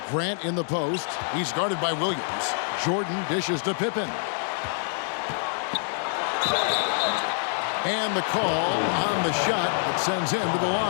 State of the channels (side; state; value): right; silent; digital silence